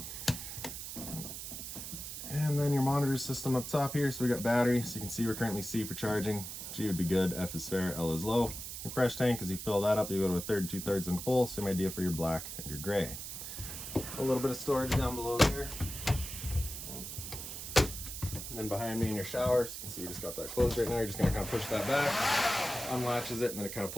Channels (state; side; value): noise; right; hiss, 8 dB below the sound